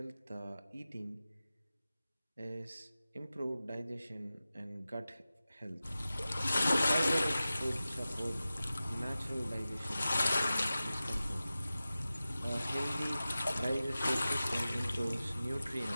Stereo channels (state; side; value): inverted; both; correlation -0.95